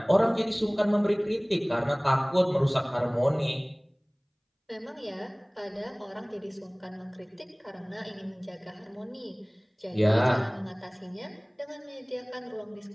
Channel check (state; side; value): identical; both; correlation 1.00